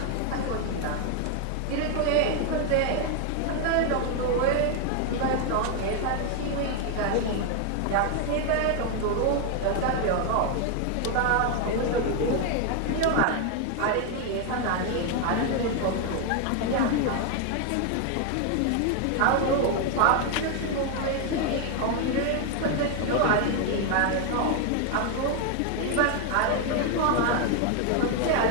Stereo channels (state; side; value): different; both; correlation 0.01